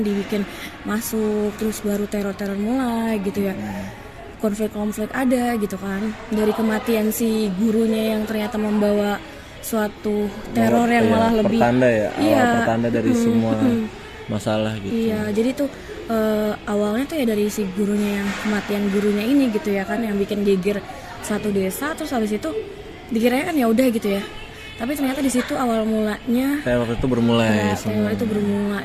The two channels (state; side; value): identical; both; correlation 1.00